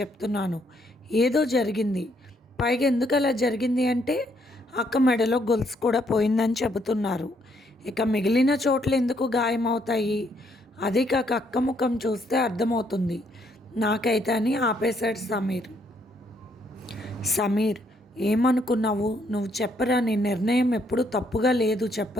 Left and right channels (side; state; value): both; normal; correlation 0.71